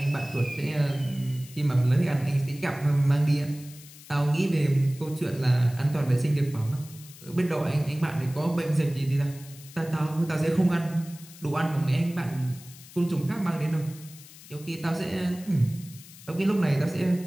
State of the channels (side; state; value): left; noise; hiss, 19 dB below the sound